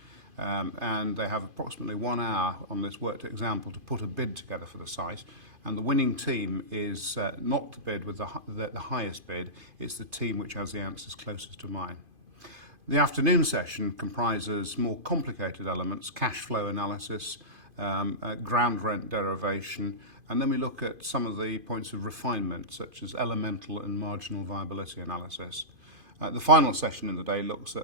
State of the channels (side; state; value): left; late; 2.5 ms